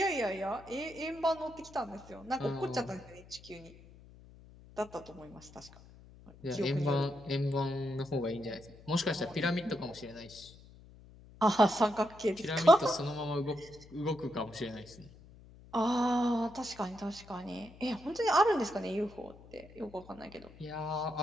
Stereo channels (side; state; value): left; noise; hum, 21 dB below the sound